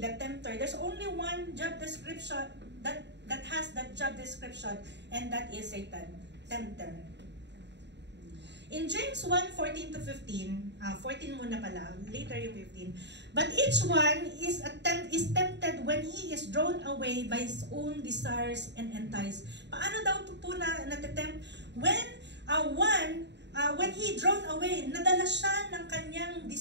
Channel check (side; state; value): left; late; 0.51 ms